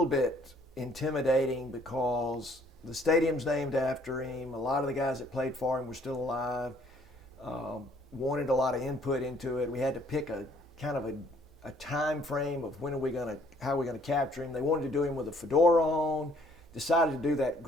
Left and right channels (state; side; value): normal; both; correlation 0.62